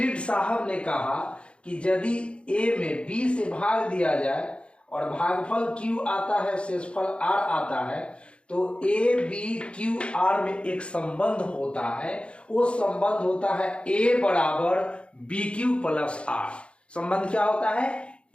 साहब ने कहा कि यदि a में b से भाग दिया जाए और भागफल q आता है, शेषफल r आता है, तो a b q r में एक संबंध होता है। वो संबंध होता है a बराबर बी क्यू प्लस आर। संबंध क्या होता है?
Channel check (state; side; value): late; right; 0.058 ms